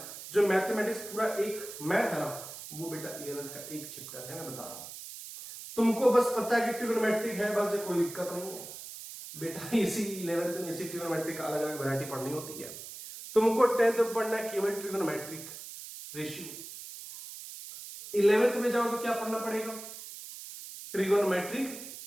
जो मैथमेटिक्स पूरा एक मैथ है ना, वो बेटा 11th का एक चैप्टर है। मैं बता रहा हूं, तुमको बस पता है कि ट्रिग्नोमेट्रिक है, बस कोई दिक्कत नहीं है बेटा। इसी 11th में इसी ट्रिग्नोमेट्रिक का अलग अलग वैरायटी पढ़नी होती है। तुमको 10th में पढ़ना है केवल ट्रिग्नोमेट्रिक रेशियो। 11th में जाओ तो क्या पढ़ना पड़ेगा, trigonometric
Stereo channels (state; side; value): noise; right; hiss, 12 dB below the sound